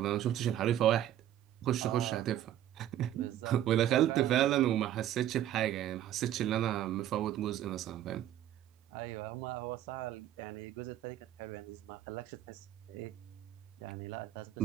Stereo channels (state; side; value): quieter; left; 12.1 dB